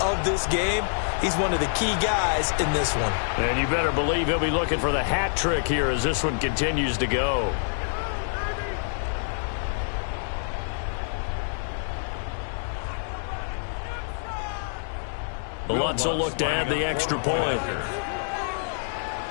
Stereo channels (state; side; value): silent; right; digital silence